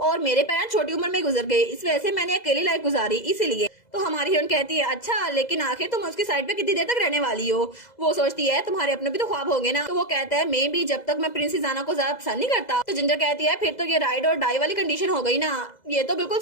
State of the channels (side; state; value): right; late; 2.0 ms